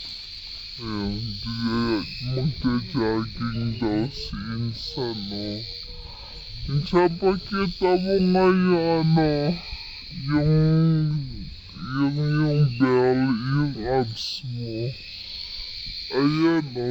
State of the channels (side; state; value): both; identical; correlation 1.00